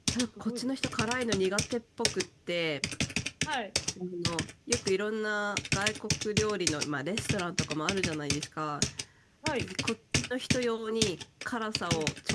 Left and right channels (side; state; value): both; identical; correlation 1.00